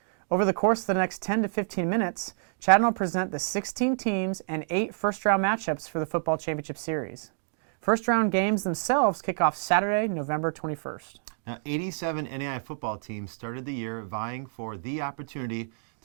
Over the course of the next 10 to 15 minutes, Chad will present the 16 teams and 8 first-round matchups for the Football Championship Series. First-round games themselves kick off Saturday, November 21st. Now, 87 NAIA football teams started the year vying for the opportunity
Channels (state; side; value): silent; left; digital silence